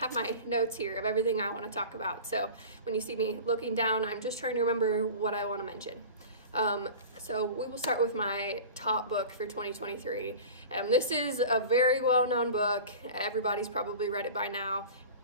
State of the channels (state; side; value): inverted; both; correlation -0.36